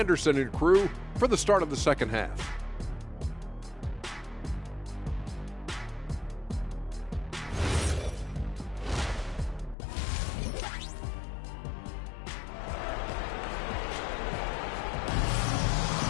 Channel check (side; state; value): right; drops out; at 9.8 s